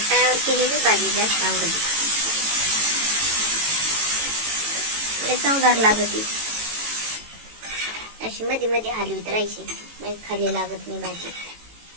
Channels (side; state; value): left; late; 18 ms